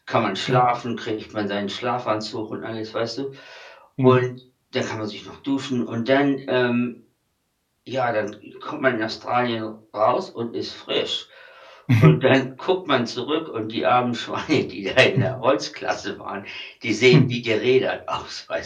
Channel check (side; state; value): both; identical; correlation 1.00